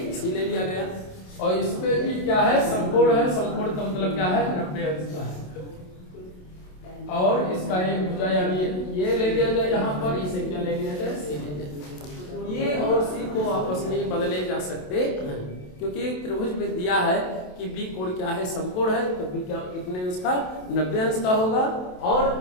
सी ले लिया गया और इसमें भी क्या है, समकोण है। समकोण का मतलब क्या है, 90 अंश का है। और इसका एक भुजा यानी ये ले लिया जाए यहाँ पर, इसे क्या ले लिया जाए, सी ले लिया जाए। ये और सी को आपस में बदले जा सकते हैं, क्योंकि त्रिभुज में दिया है कि बी कोण क्या है, समकोण है। तो बी क्या कितने अंश का, 90 अंश का होगा। और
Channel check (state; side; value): late; right; 27 ms